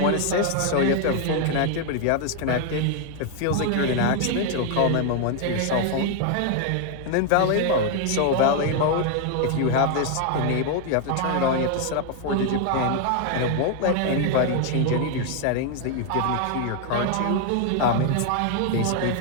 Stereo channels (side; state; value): both; different; correlation 0.00